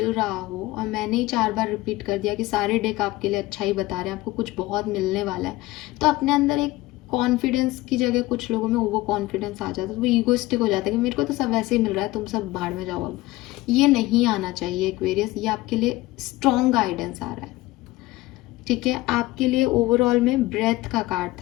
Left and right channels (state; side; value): quieter; right; 18.8 dB